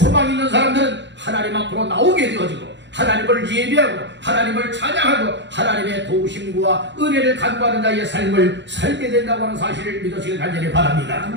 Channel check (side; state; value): left; late; 0.52 ms